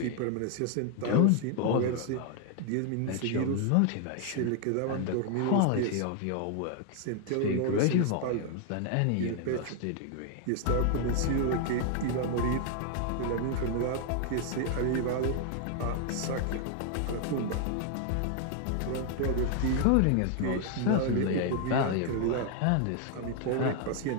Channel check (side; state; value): both; different; correlation 0.00